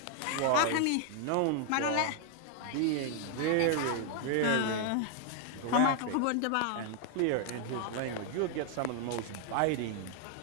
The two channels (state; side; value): different; both; correlation 0.00